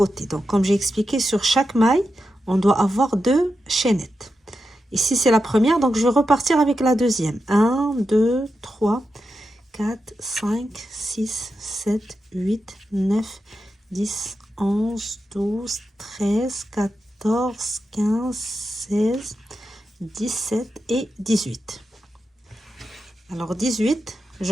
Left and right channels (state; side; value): normal; both; correlation 0.89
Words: Donc comme j'ai expliqué, sur chaque maille, on doit avoir deux chaînettes. Ici, c'est la première. Donc je vais repartir avec la deuxième. 1, 2, 3, 4, 5, 6, 7, 8, 9, 10, 11, 12, 13, 14, 15, 16, 17 et 18. Alors 18, je